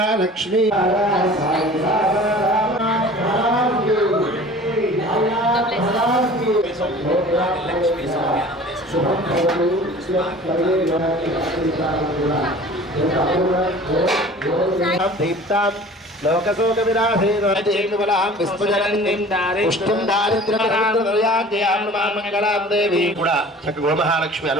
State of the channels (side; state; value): both; normal; correlation 0.44